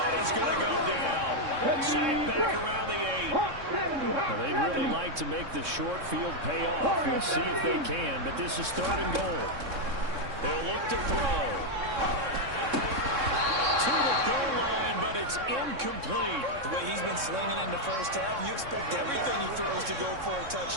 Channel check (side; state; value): left; late; 3.6 ms